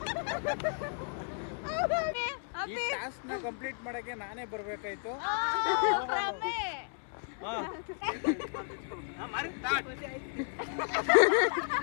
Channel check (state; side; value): silent; right; 56 dB below the other